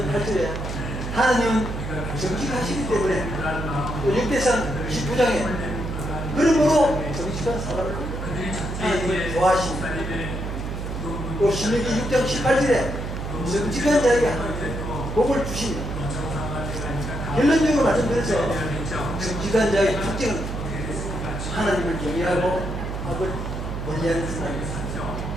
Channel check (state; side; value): noise; right; hum, 5 dB below the sound